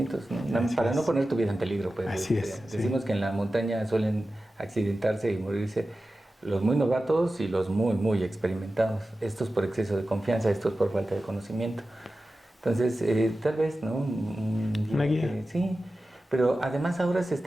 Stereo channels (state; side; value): normal; both; correlation 0.94